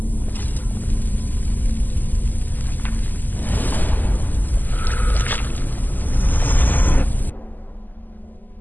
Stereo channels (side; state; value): right; late; 0.086 ms